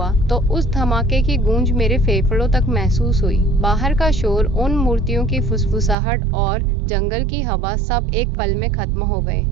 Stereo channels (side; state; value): left; drops out; at 6.0 s